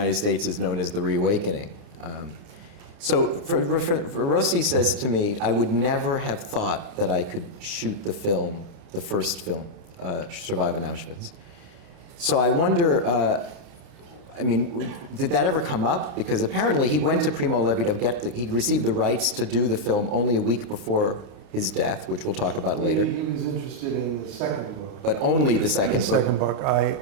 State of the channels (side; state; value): left; late; 29 ms